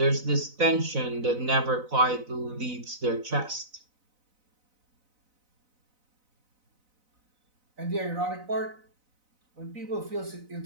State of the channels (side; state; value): left; late; 4.0 ms